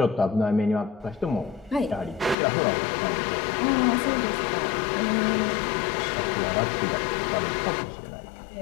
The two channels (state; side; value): drops out; right; at 2.4 s